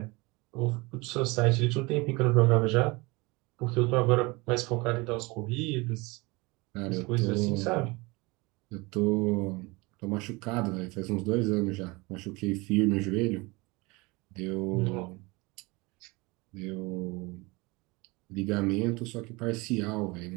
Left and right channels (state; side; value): quieter; left; 24.8 dB